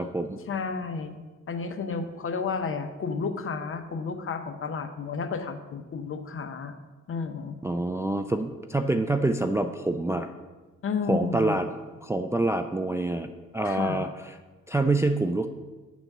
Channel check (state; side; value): normal; both; correlation 0.66